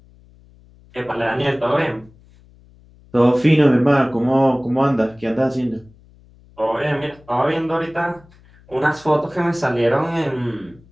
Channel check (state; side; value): noise; left; hum, 27 dB below the sound